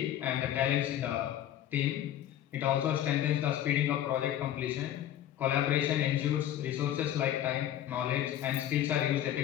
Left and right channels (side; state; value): right; quieter; 11.6 dB